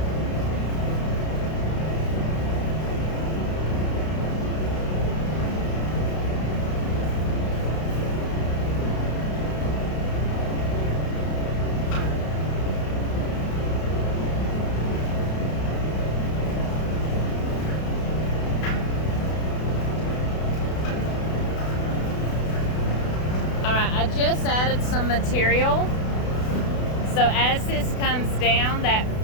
I just added some material. So as this comes down, that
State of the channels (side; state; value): right; late; 32 ms